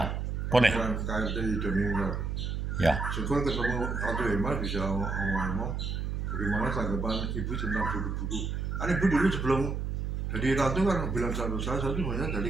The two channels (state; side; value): noise; right; hum, 2 dB below the sound